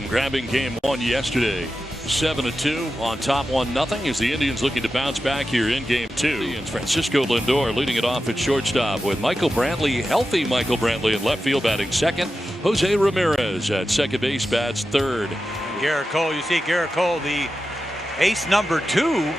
grabbing Game 1 yesterday. 7-2 on top 1-0 as the Indians looking to bounce back here in Game 2. And Francisco Lindor leading it off at shortstop with Michael Brantley, healthy Michael Brantley in left field batting second. Jose Ramirez at second base bats third. Garrett Cole, you see Garrett Cole, the ace number 2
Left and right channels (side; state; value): both; normal; correlation 0.91